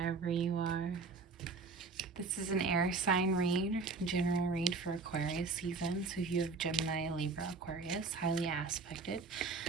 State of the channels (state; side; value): quieter; left; 4.3 dB